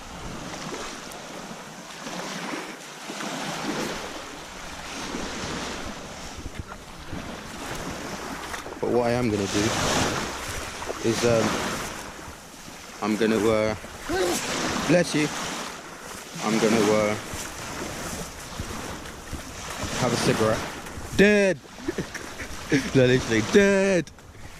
But what I am going to do is I'm going to bless you, I'm going to have a cigarette. Dead. No, literally dead.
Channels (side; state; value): both; identical; correlation 1.00